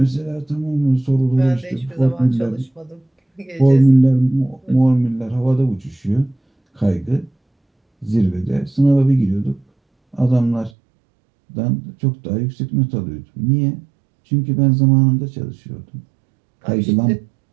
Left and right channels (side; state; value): left; drops out; at 10.7 s